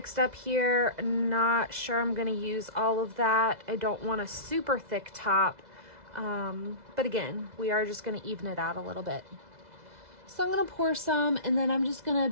up here. Not sure I'm going to use all of that. I don't want a super thick top. But again, we are just going to even it out a little bit. So I'm going to pour some, and then I'm just going to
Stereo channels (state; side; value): late; left; 2.0 ms